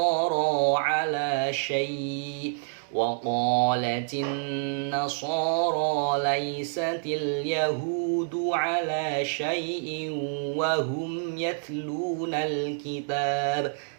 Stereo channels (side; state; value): left; silent; digital silence